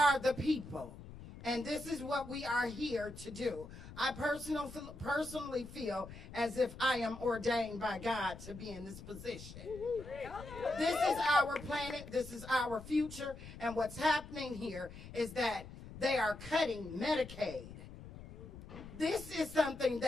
the people, and this is what we are here to do. I personally feel as if I am ordained by God to be in this position. This is our planet, this is our future, and what's happening here is that they are cutting Medicaid. This is something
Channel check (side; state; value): left; noise; rumble, 14 dB below the sound